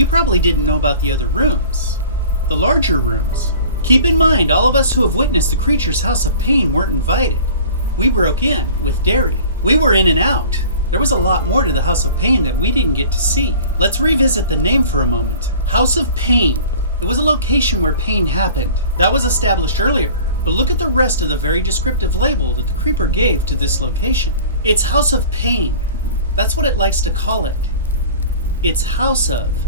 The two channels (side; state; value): both; inverted; correlation -0.43